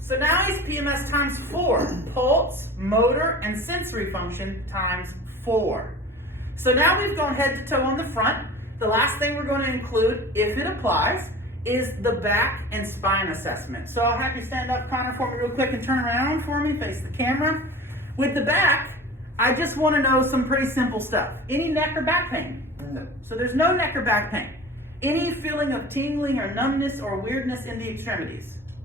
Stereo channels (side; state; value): both; normal; correlation 0.38